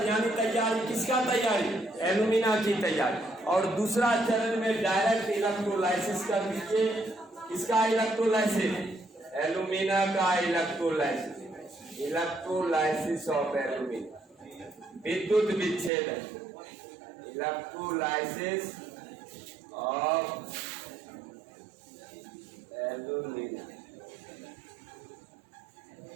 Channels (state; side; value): drops out; left; at 15.9 s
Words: यानी तैयारी। किसका तैयारी? एल्युमिना की तैयारी। और दूसरा चरण में डायरेक्ट इलेक्ट्रोलाइसिस कर दीजिए। किसका इलेक्ट्रोलाइसिस? एल्युमिना का इलेक्ट्रोलाइसिस। इलेक्ट्रोलाइसिस ऑफ एल्युमिना, विद्युत विच्छेदन। इलेक्ट्रोलाइसिस ऑफ एल्युमिना,